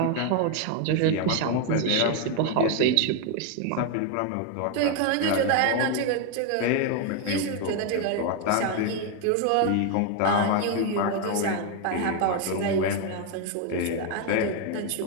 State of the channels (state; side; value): different; both; correlation 0.01